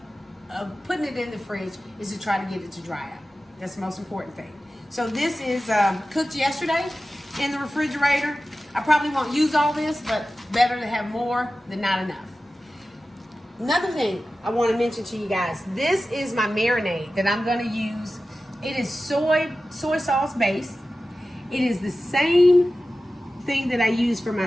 putting it in the fridge is to try to get it to dry out. That's the most important thing. So this is cooked yesterday in the refrigerator. I probably won't use all this, but better to have more than not enough. Another thing I want to mention to you guys, this is my marinade that I'm going to use. It is soy sauce based. It is the same thing that I use for my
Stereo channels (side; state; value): both; normal; correlation 0.94